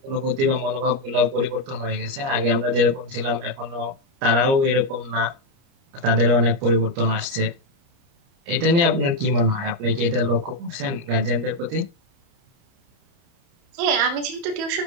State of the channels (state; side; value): late; left; 30 ms